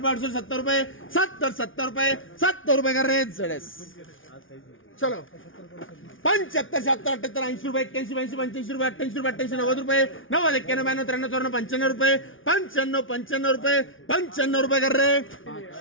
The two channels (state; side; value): late; right; 0.57 ms